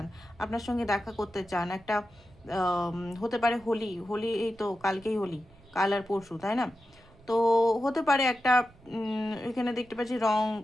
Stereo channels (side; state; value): right; noise; rumble, 26 dB below the sound